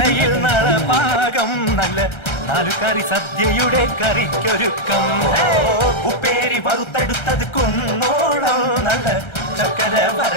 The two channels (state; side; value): late; right; 1.3 ms